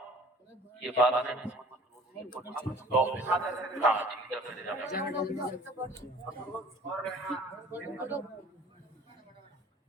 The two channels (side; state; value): both; normal; correlation 0.49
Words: یہ بات ہے